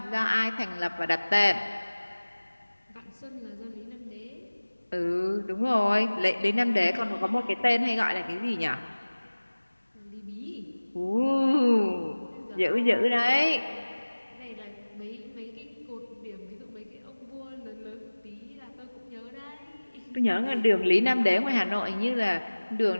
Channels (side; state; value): both; inverted; correlation -1.00